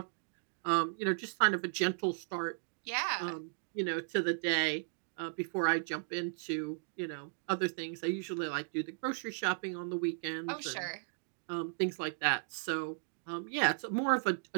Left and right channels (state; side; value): silent; left; digital silence